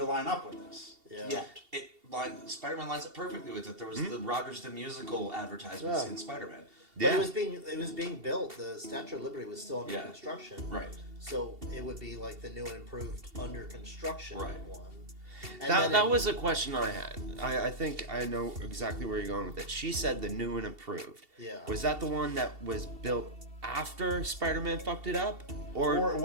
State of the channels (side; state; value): left; late; 2.7 ms